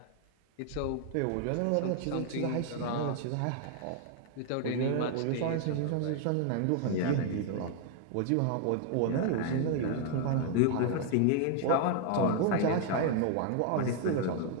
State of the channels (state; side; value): different; both; correlation 0.00